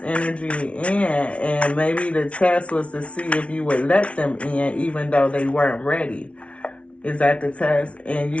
energy in, and maybe the test was to see if you would let them in even though they weren't ready. Is that the test? And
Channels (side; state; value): right; late; 0.062 ms